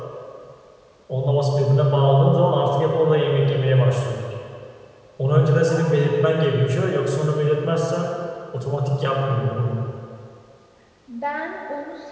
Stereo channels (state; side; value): identical; both; correlation 1.00